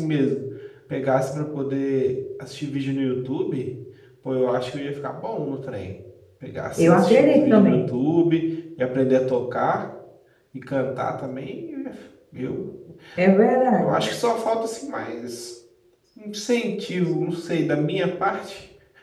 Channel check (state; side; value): identical; both; correlation 1.00